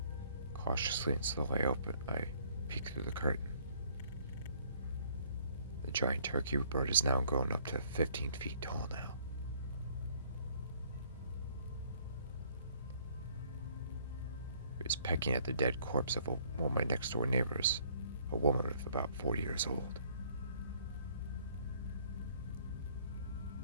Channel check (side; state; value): both; inverted; correlation -0.61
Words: Cautiously and slowly I peek through the curtain. The giant turkey bird is now grown up to 15 feet tall now. It was pecking at the dead corpse of one of my next door neighbors, a woman of about 40 years old.